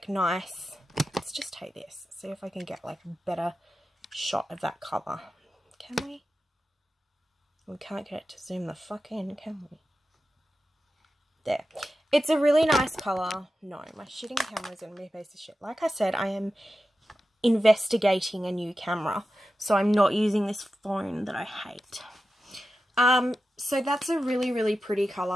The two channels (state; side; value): normal; both; correlation 0.92